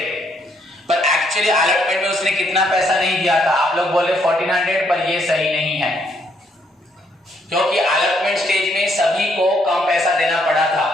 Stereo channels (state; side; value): normal; both; correlation 0.71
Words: पर एक्चुअली अलॉटमेंट में उसने कितना पैसा नहीं दिया था, आप लोग बोले 1400, पर ये सही नहीं है, क्योंकि अलॉटमेंट स्टेज में सभी को कम पैसा देना पड़ा था,